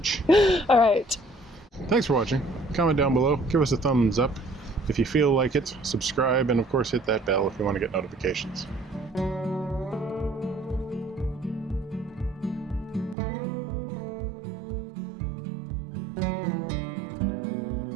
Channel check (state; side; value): drops out; left; at 13.2 s